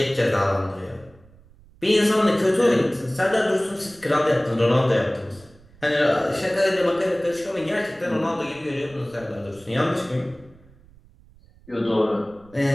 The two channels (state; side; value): noise; right; rumble, 26 dB below the sound